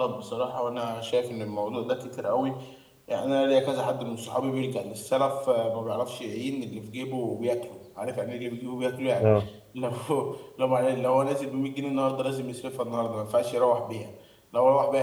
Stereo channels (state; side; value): identical; both; correlation 1.00